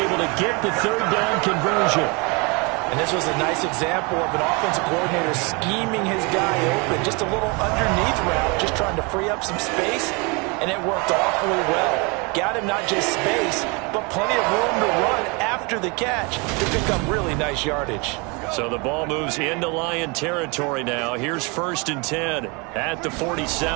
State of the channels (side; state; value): left; quieter; 29.8 dB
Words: able to get the 3rd down conversion. And this was a nice example of an offensive coordinator scheming his guy open. Just a little underneath route, just trying to free up some space, and it worked awfully well. Got him not just space, but plenty of room to run after the catch to pick up really nice yardage. So the ball moves into Lion territory now. Here's 1st and 10 at the